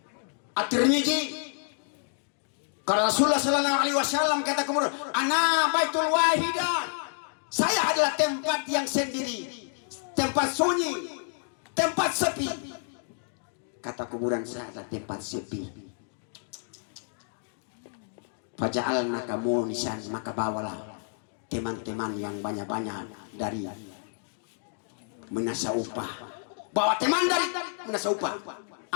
At-Tirmidzi. Karena Rasulullah Sallallahu Alaihi Wasallam kata kubur, ana baitul wahidah, saya adalah tempat yang sendiri, tempat sunyi, tempat sepi. Kata kuburan, saya adalah tempat sepi. Faja'alna kamu nisan, maka bawalah teman-teman yang banyak-banyak dari menasa upah. Bawa teman dari menasa upah.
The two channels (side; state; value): right; silent; 59 dB below the other